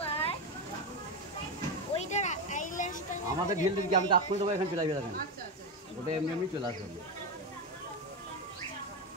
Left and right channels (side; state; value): both; normal; correlation 0.13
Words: আমাদের ঢিল দিকে আমি তো আপনি দেবো, এখানে চলে আসবে, দেখেন ওটা এমনি এমনি চলে আসবে।